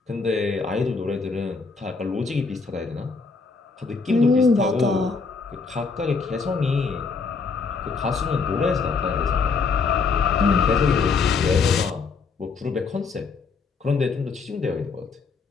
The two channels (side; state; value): right; quieter; 4.8 dB